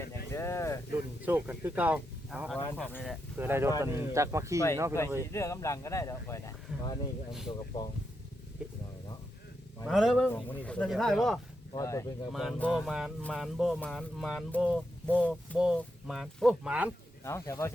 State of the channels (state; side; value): normal; both; correlation 0.84